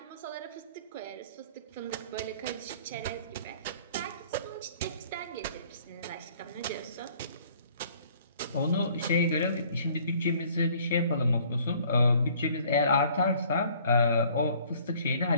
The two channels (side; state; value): both; inverted; correlation -0.56